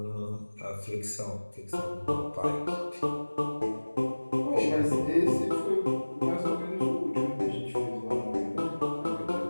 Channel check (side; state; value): both; inverted; correlation -1.00